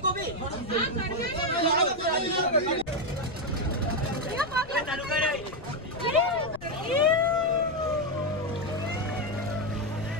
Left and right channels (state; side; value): noise; left; rumble, 17 dB below the sound